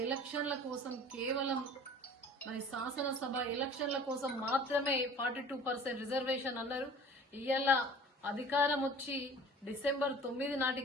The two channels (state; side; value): normal; both; correlation 0.44